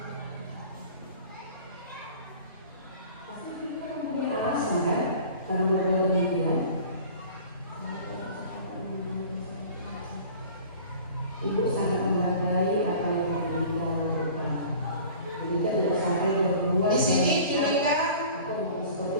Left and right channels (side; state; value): both; inverted; correlation -0.44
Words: Karena berbuat demikian, ibu sangat menghargai apa yang Ibu lakukan. Ibu tidak sampai berbuat. Di sini mereka